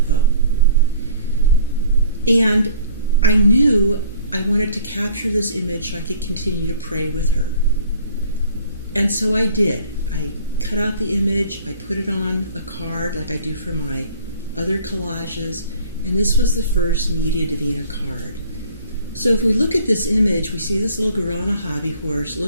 And I knew I wanted to capture this image so I could continue to pray with her. And so I did. I cut out the image, I put it on a card like I do for my other collages, and this was the first Media Divina card. So if we look at this image, we see this little girl on a hobby horse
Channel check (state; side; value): inverted; both; correlation -0.52